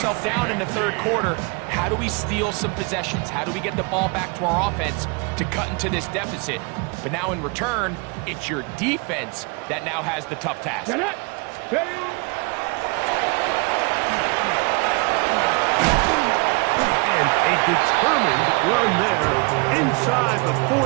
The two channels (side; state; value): left; quieter; 30.5 dB